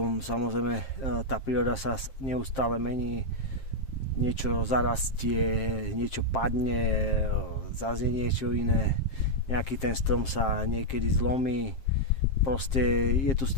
samozrejme tá príroda sa neustále mení, niečo zarastie, niečo padne, zase niečo iné, nejaký ten strom sa niekedy zlomí, proste je tu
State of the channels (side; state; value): right; late; 7.5 ms